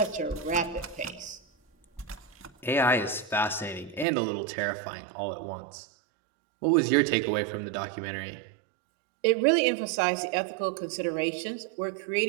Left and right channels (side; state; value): left; drops out; at 4.0 s